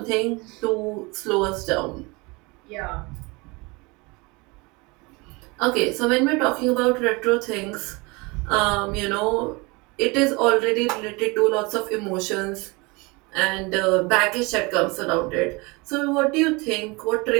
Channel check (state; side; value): quieter; left; 26.3 dB